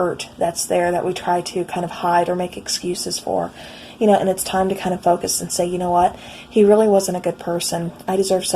that's there that we try to kind of hide or make excuses for. You know, and it's time to kind of focus and say, you know what, he really wasn't a good person. I deserve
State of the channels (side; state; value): both; identical; correlation 1.00